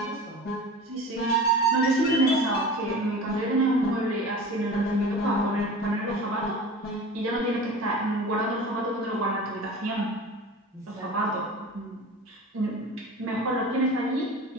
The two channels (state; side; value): normal; both; correlation 0.36